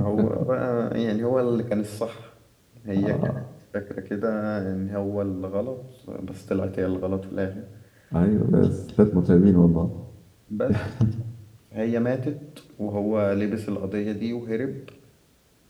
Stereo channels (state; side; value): identical; both; correlation 1.00